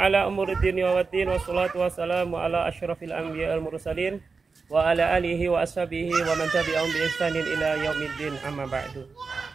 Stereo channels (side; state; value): left; quieter; 4.6 dB